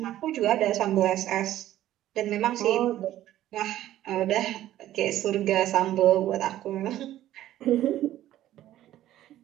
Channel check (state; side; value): quieter; left; 13.4 dB